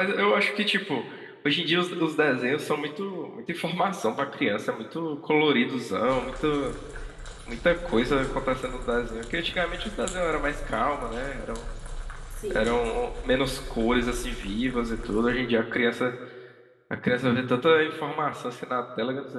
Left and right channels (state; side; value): identical; both; correlation 1.00